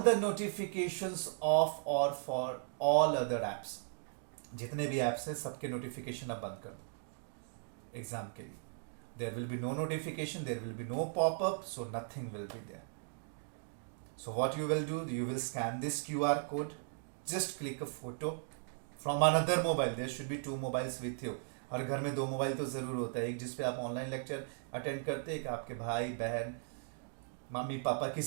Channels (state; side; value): silent; left; digital silence